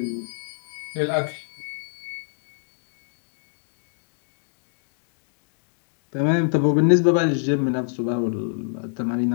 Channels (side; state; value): right; silent; digital silence